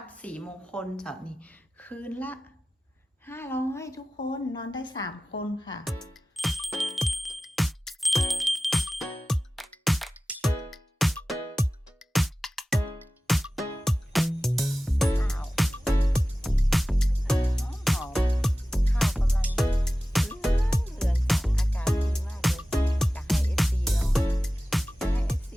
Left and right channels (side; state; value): both; normal; correlation 0.96